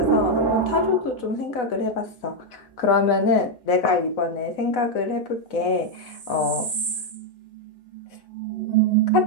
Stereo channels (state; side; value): late; right; 4.0 ms